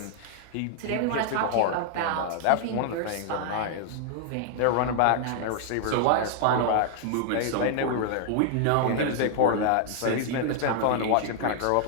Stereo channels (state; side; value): different; both; correlation 0.00